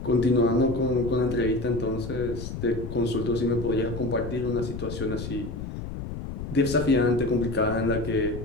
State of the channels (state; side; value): noise; left; rumble, 7 dB below the sound